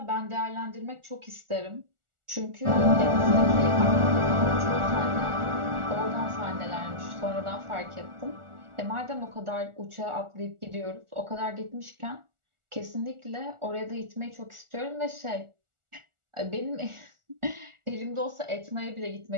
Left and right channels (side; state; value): left; late; 1.4 ms